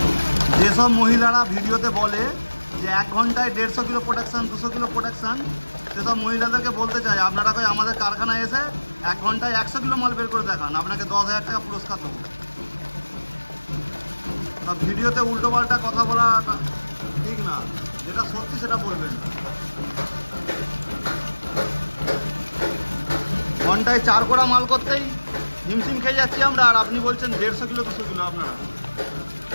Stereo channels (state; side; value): inverted; both; correlation -1.00